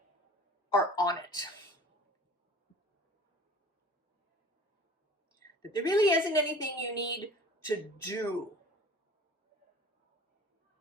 are on it. That there really isn't anything you need to do.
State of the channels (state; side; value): normal; both; correlation 0.44